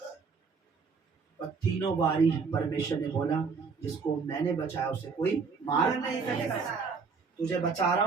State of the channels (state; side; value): quieter; left; 5.2 dB